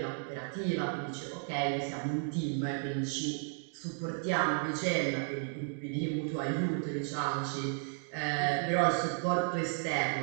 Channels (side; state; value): left; silent; 55 dB below the other